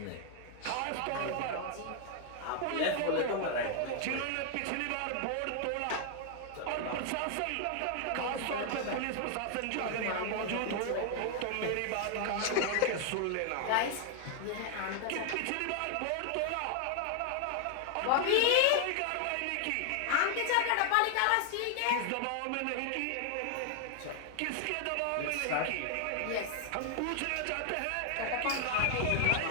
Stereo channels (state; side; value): different; both; correlation 0.00